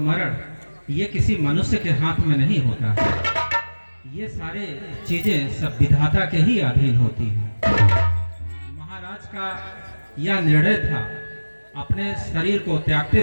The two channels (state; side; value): inverted; both; correlation -1.00